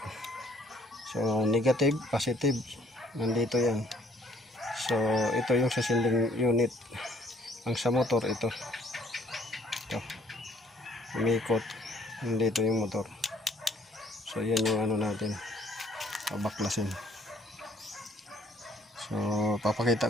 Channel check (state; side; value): normal; both; correlation 0.61